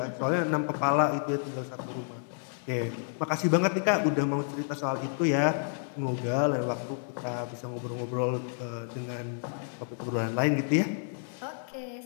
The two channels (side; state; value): right; silent; digital silence